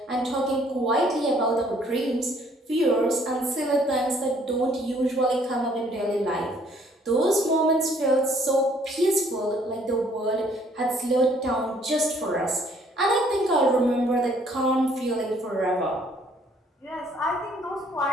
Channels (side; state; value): both; normal; correlation 0.62